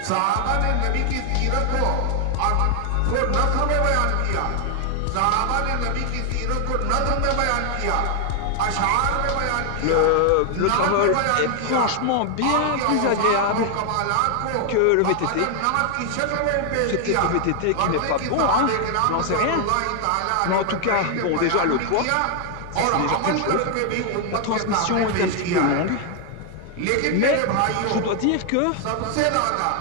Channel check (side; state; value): both; different; correlation 0.00